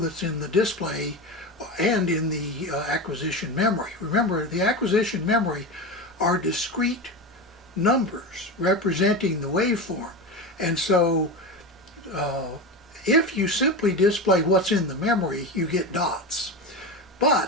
in the display and in the acquisition memory. Remember, the acquisition memory are discrete numbers representing the waveform. And so if you simply display what's in the memory, you get dots.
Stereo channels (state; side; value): normal; both; correlation 0.22